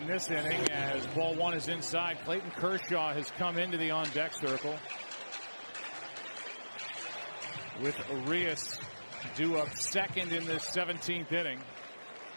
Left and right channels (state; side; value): inverted; both; correlation -1.00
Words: this inning as ball 1 is inside. Clayton Kershaw has come into the on-deck circle with Urias due up second in the 17th inning.